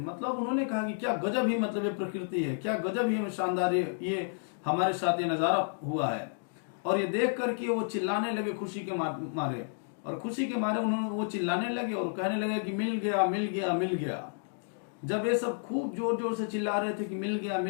मतलब उन्होंने कहा कि क्या गजब ही, मतलब ये प्रकृति है, क्या गजब ही शानदार ये हमारे साथ ये नजारा हुआ है। और ये देख करके वो चिल्लाने लगे खुशी के मारे, और खुशी के मारे उन्होंने वो चिल्लाने लगे और कहने लगे कि मिल गया मिल गया मिल गया। जब ये सब खूब जोर जोर से चिल्ला रहे थे कि मिल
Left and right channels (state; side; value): silent; right; digital silence